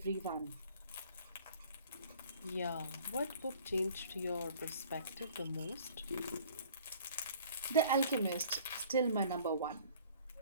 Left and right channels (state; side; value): inverted; both; correlation -0.50